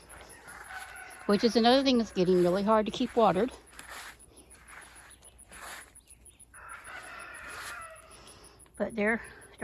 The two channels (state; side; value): identical; both; correlation 1.00